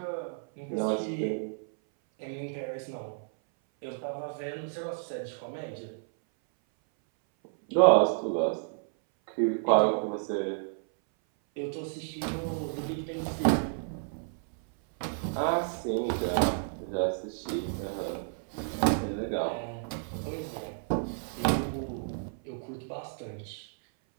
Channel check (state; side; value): silent; left; 57 dB below the other